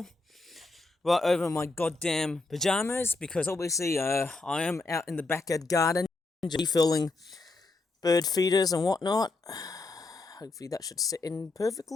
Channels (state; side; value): quieter; right; 3.4 dB